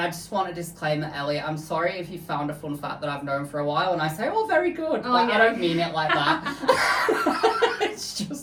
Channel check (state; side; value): identical; both; correlation 1.00